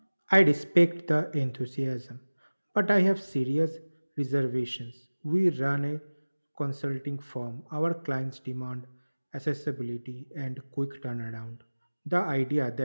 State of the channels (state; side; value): inverted; both; correlation -1.00